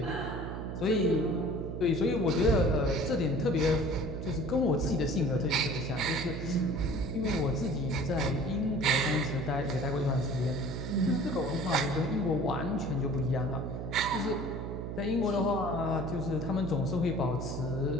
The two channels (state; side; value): noise; right; hum, 5 dB below the sound